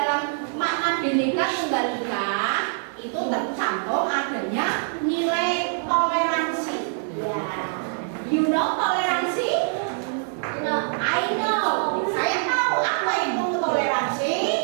makna Bhinneka Tunggal Ika itu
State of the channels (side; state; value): left; silent; 55 dB below the other